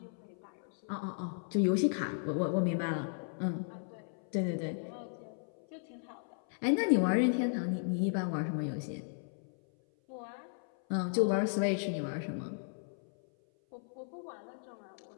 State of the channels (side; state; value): right; silent; 54 dB below the other